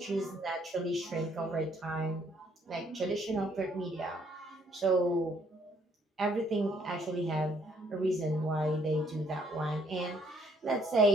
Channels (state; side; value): normal; both; correlation 0.66